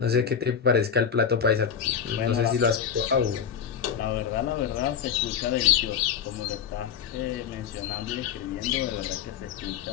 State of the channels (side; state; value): right; quieter; 7.6 dB